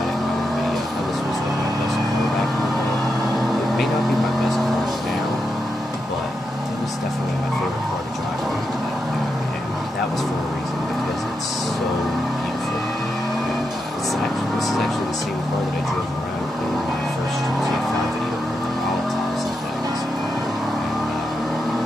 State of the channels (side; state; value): both; normal; correlation 0.86